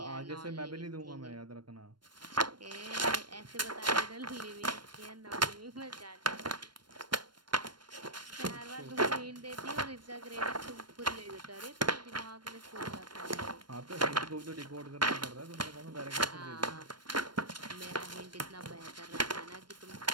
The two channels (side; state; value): left; late; 0.72 ms